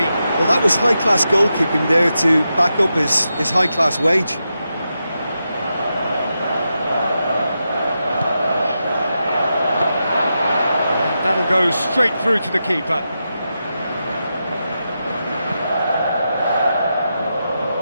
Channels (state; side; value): inverted; both; correlation -0.88